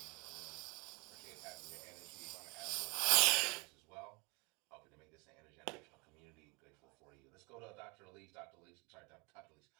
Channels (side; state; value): left; quieter; 24.5 dB